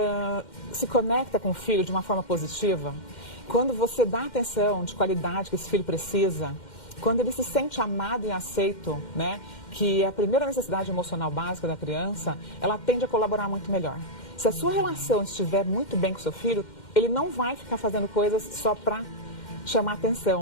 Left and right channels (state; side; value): late; right; 2.1 ms